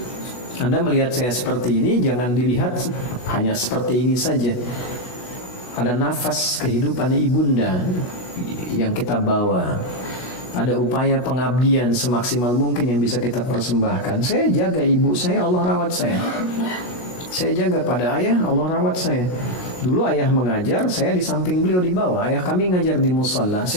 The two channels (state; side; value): late; right; 16 ms